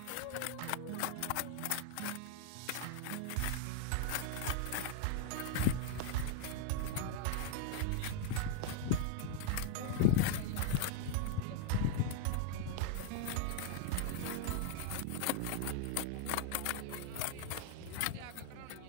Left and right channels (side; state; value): both; different; correlation 0.00